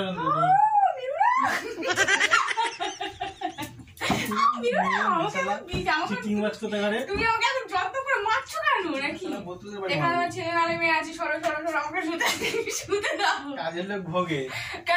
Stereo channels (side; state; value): both; identical; correlation 1.00